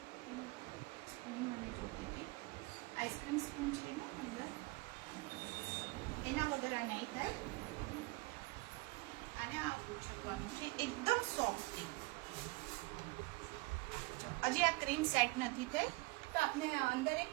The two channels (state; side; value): quieter; left; 23.7 dB